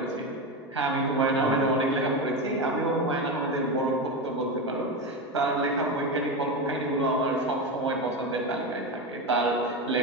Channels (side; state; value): both; normal; correlation 0.17